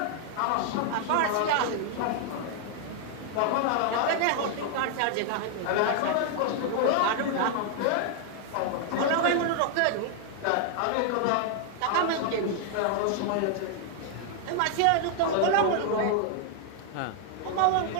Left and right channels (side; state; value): both; different; correlation 0.00